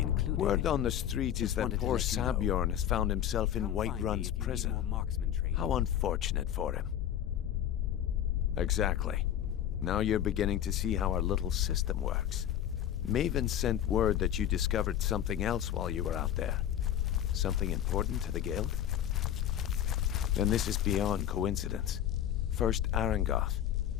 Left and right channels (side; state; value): right; quieter; 10.7 dB